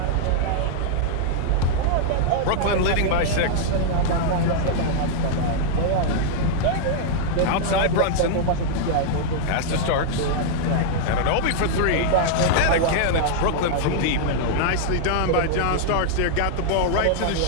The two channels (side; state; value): both; different; correlation -0.01